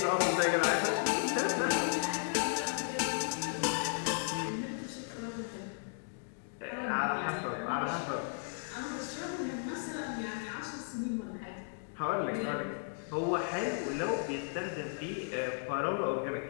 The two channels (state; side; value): silent; right; digital silence